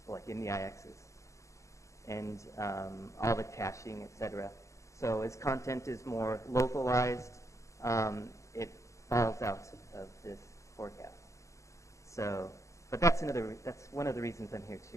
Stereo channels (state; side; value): late; right; 0.15 ms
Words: like in the IXs and all the caching, etc. So as content is more localized, it falls out of this forecast. So, but that's one of the reasons I'm here